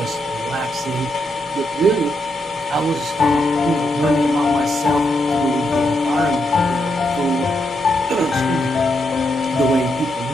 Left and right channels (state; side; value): normal; both; correlation 0.81